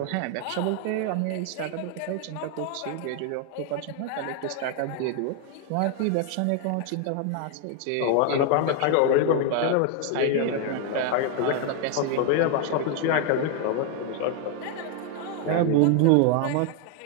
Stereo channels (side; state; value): both; different; correlation 0.00